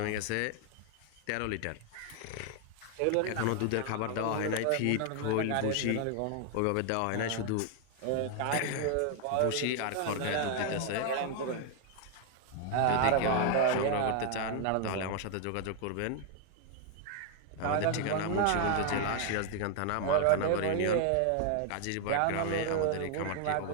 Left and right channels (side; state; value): both; different; correlation 0.00